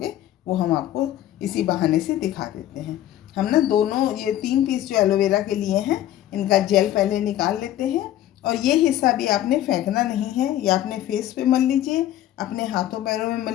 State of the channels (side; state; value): right; quieter; 12.8 dB